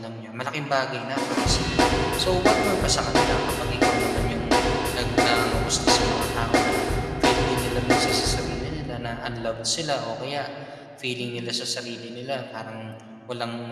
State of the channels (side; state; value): both; identical; correlation 1.00